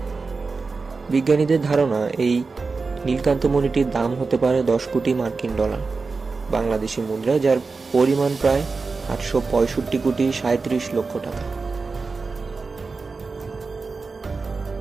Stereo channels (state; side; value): quieter; left; 4.3 dB